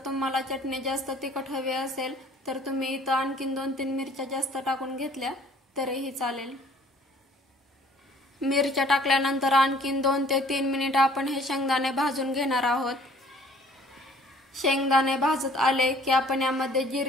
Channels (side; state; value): both; normal; correlation 0.55